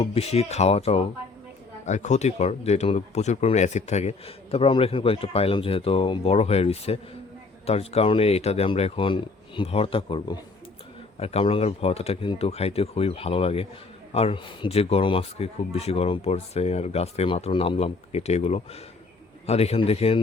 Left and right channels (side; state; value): right; quieter; 3.9 dB